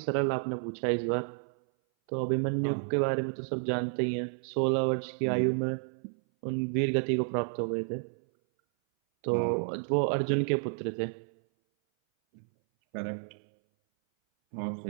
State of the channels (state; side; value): silent; left; 57 dB below the other